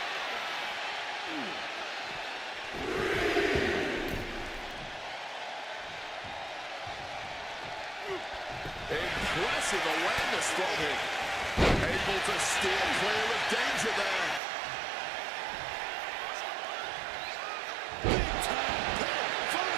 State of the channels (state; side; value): drops out; left; at 14.4 s